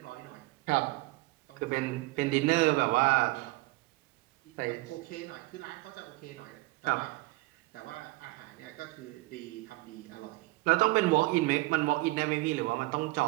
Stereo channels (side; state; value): left; quieter; 21.3 dB